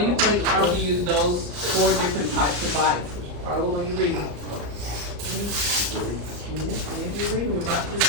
you think the author used those 4 different types of biases? Follow when you read them. You read them, we're about to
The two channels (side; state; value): left; late; 34 ms